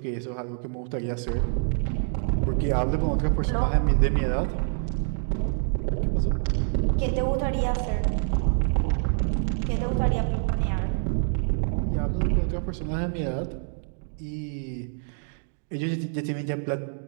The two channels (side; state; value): left; silent; 61 dB below the other